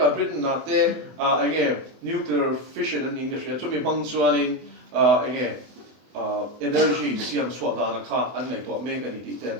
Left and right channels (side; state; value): left; late; 24 ms